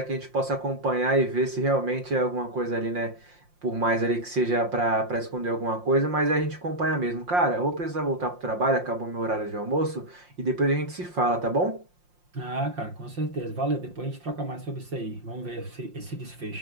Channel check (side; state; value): left; late; 5.7 ms